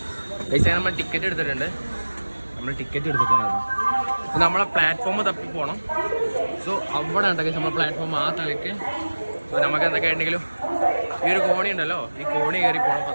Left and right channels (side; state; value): both; inverted; correlation -1.00